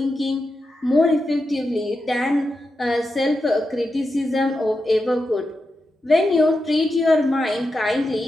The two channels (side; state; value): both; normal; correlation 0.88